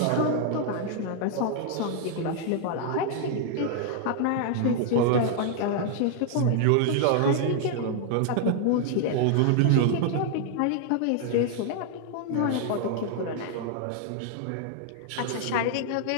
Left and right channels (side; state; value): both; different; correlation -0.01